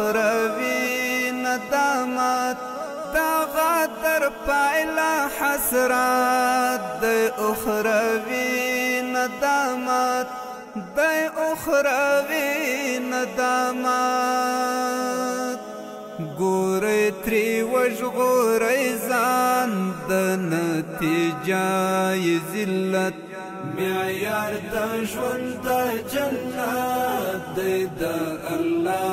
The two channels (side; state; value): both; identical; correlation 1.00